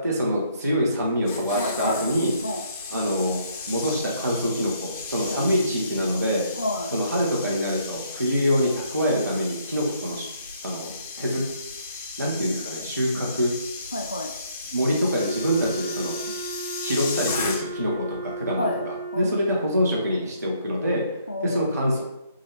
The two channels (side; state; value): both; inverted; correlation -0.67